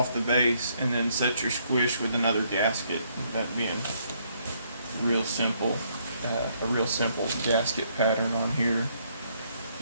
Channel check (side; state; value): both; inverted; correlation -0.70